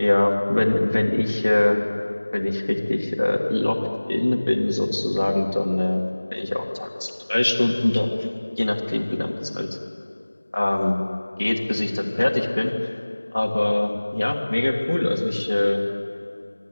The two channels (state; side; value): inverted; both; correlation -1.00